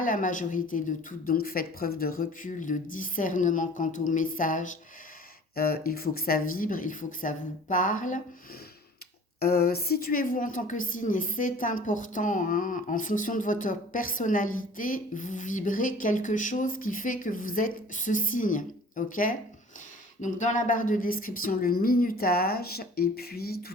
la majorité de toutes. Donc faites preuve de recul, de discernement quant au message. Il faut que ça vibre, il faut que ça vous parle. Situez-vous en tant que signe, et c'est important, hein, en fonction de votre personnalité, vous vibrez quelque chose qui fait que vous êtes ce signe, ok? Donc dans la barre de description, le minutage et puis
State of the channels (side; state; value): both; normal; correlation 0.47